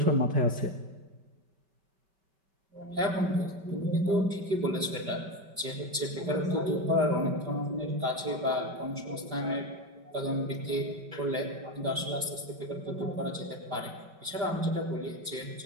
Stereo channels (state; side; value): late; left; 5.2 ms